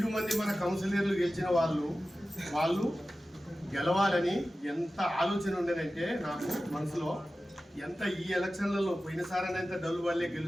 మంది మన కౌన్సిలర్లు గెలిచిన వాళ్ళు గెలవాలని ఎంత ఆలోచన ఉండేదంటే నాకు మనసులో ఎంత ఈ ఎలక్షన్లలో పోయినసారి ఎంత డల్లు వల్లే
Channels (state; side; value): normal; both; correlation 0.95